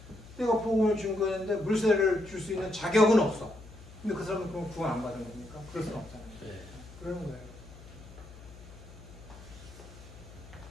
내가 복음을 준 거였는데 물세례를 줄 수 있는 자격은 없어. 근데 그 사람은 그럼 구원 안 받은 겁니까? 그럴 수는 없잖아요. 그러는 거예요.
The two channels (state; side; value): noise; left; hum, 18 dB below the sound